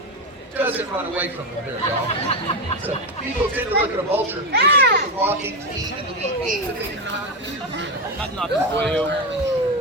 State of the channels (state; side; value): normal; both; correlation 0.12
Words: doesn't run away from them very often. So people tend to look at a vulture and think of the walking feet and the neat beak that they cannot use. That's nothing for you.